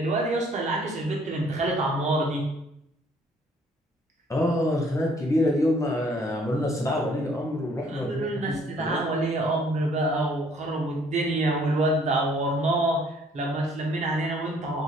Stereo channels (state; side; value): normal; both; correlation 0.61